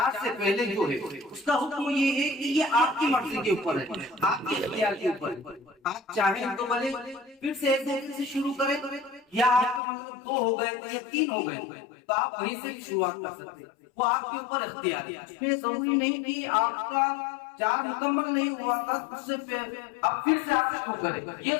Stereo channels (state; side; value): drops out; right; at 9.8 s